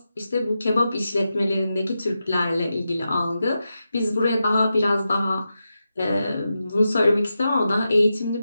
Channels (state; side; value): inverted; both; correlation -0.90